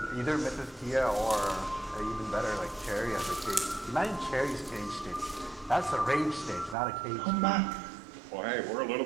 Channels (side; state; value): left; drops out; at 6.8 s